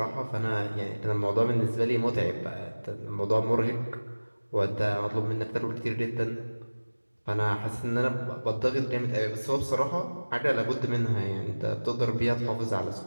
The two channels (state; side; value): inverted; both; correlation -1.00